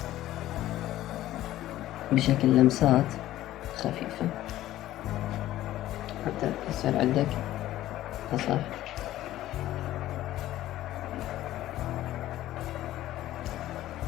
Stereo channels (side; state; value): right; quieter; 14.3 dB